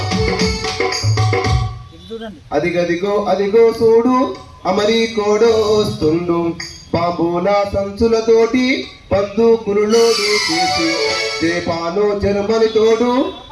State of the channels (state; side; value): identical; both; correlation 1.00